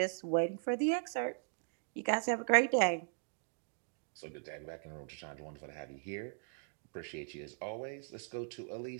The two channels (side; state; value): left; silent; digital silence